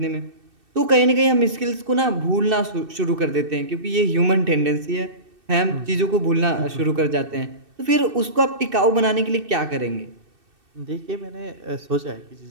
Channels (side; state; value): left; late; 2.6 ms